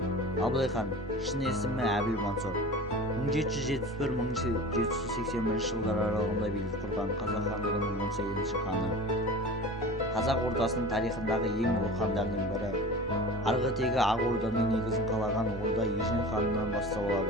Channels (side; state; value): both; normal; correlation 0.36